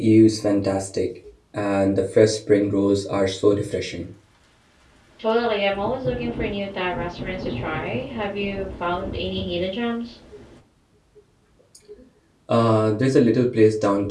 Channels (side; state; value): both; identical; correlation 1.00